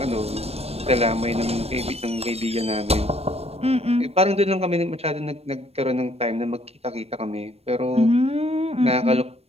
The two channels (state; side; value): late; left; 0.29 ms